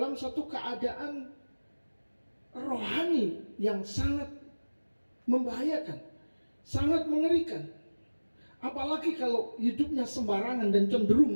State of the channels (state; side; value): inverted; both; correlation -1.00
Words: satu keadaan rohani yang sangat membahayakan, sangat mengerikan. Apalagi kalau hidupnya sembarangan dan